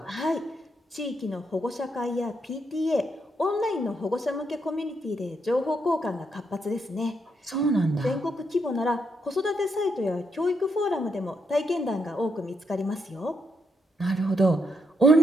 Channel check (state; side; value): normal; both; correlation 0.79